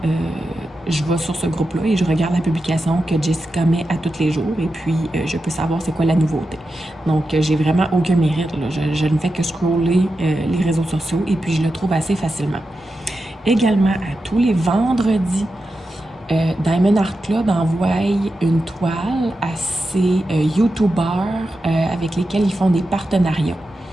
je vais sur ce groupe-là et je regarde la publication que Jessica met à tous les jours et puis je peux savoir c'est quoi la nouveauté. Donc, j'ai vraiment aucun mérite. Là. Je ne fais que scroller les réseaux sociaux et puis je le trouve assez facilement. Également, à tous les vendredis, Diamond Art Club envoie une toile à ces YouTubers avec lesquels ils font des partenariats.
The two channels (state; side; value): normal; both; correlation 0.90